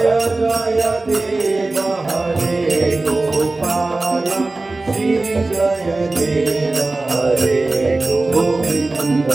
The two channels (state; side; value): quieter; left; 3.2 dB